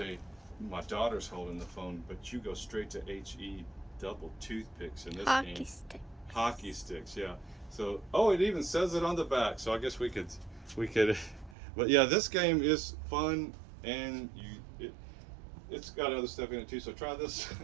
my daughter's holding the phone, but you go straight to HE double toothpicks in this Hockey game. stick. Hockey sticks, yeah. So, it even says it on the back. So I guess we could, but yeah, this game is fun, and it's got other stuff in it too. So try this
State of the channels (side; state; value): left; drops out; at 11.6 s